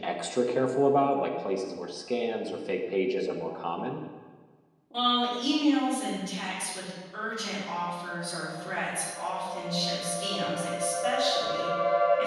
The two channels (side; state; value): both; identical; correlation 1.00